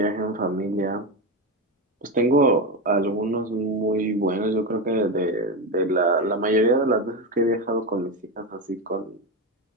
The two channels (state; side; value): normal; both; correlation 0.15